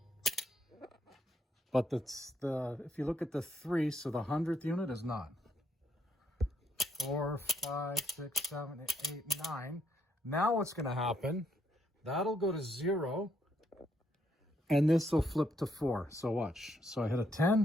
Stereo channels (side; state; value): both; normal; correlation 0.74